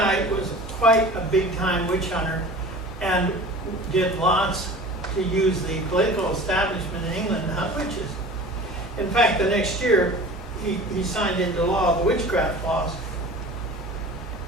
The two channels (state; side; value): normal; both; correlation 0.39